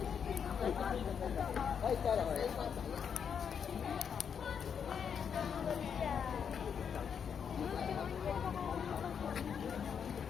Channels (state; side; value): quieter; right; 7.3 dB